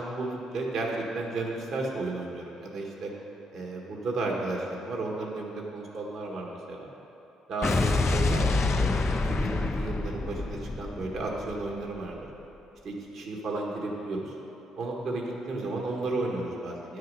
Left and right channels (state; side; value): normal; both; correlation 0.79